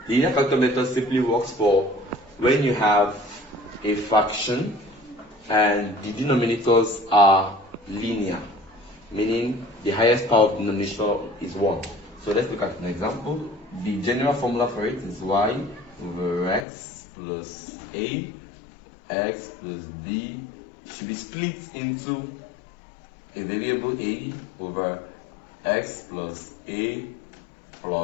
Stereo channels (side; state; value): right; drops out; at 16.7 s